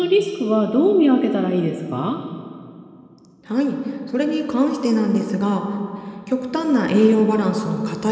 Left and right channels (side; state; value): both; identical; correlation 1.00